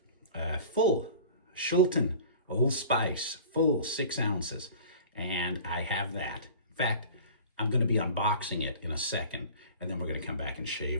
full Shulton Old Spice, full 6 ounces. And I have that. In fact, I'm going to be unboxing it in a second, and then we're going to come back and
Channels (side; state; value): both; inverted; correlation -0.42